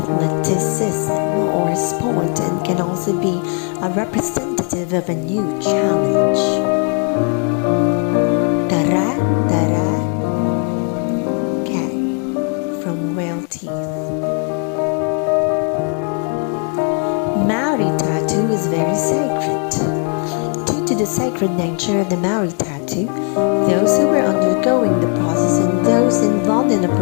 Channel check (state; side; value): quieter; right; 39.4 dB